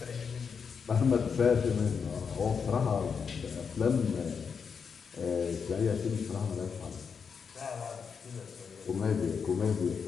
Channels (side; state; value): right; quieter; 6.1 dB